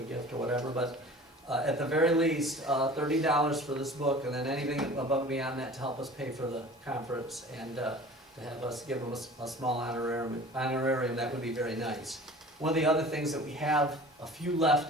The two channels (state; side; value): normal; both; correlation 0.43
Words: gift or whatever, but at the very least, $30 for this book, and then anything above and beyond that to help us pay for the conference, and to have us give them a small honorarium, that would be very nice. One of the other things that we have a few